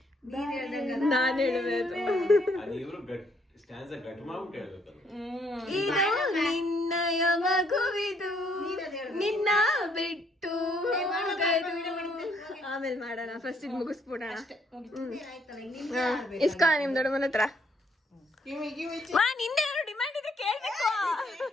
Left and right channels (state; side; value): normal; both; correlation 0.69